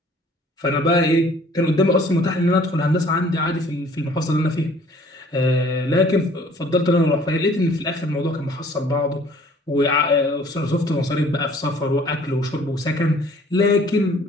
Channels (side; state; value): both; normal; correlation 0.55